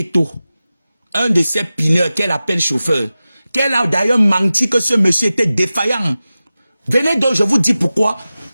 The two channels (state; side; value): inverted; both; correlation -0.95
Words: Un de ces pineurs qu'elle appelle chauffeur. Qu'elle a d'ailleurs menti que ce monsieur était défaillant. Venez donc, je vous dis pourquoi.